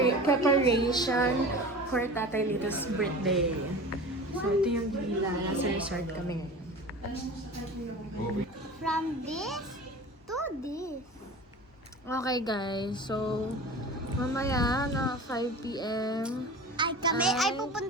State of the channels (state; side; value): normal; both; correlation 0.36